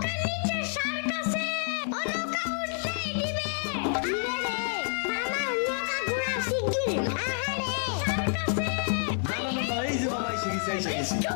নিচে শার্ক আছে, ও নৌকা উঠতেই দিবে। দিবে রে মামা, নৌকা ঘোরা শিগগির। আহারে শার্ক আছে। না না না না, এই যে মামা এসে গেছি, এসে গেছি।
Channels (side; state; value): right; silent; 58 dB below the other